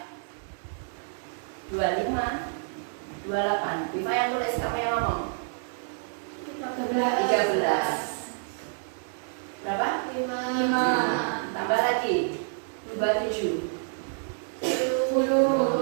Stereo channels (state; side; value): silent; left; 59 dB below the other